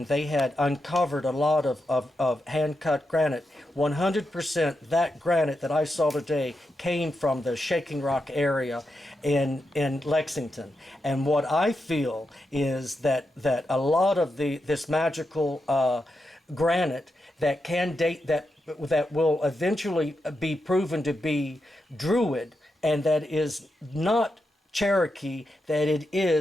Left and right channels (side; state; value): both; normal; correlation 0.86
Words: they had uncovered a lot of hand-cut granite. 100% that granite that I saw today came from the shaking rock area in Lexington. And what I feel is that a lot of this magical granite that can date that will eventually be proven to be Druid, and that is not Cherokee, that it